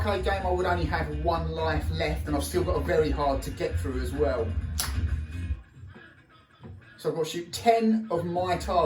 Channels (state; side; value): identical; both; correlation 1.00